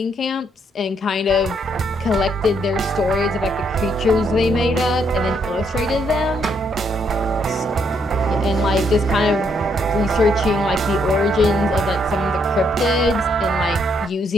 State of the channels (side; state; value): both; normal; correlation 0.73